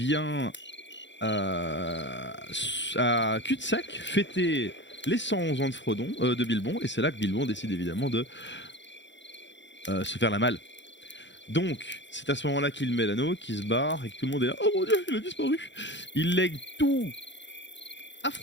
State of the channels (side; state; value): right; late; 0.53 ms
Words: à cul-de-sac fêter les 111 ans de Frodon, de Bilbon, et c'est là que Bilbon décide évidemment de se faire la malle. Donc, c'est à ce moment-là qu'il met l'anneau, qu'il se barre, et que tout le monde est là, oh mon dieu, il a disparu. Il lègue tout à